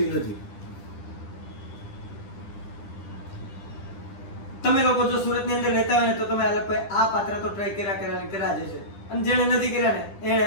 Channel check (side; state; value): right; late; 10 ms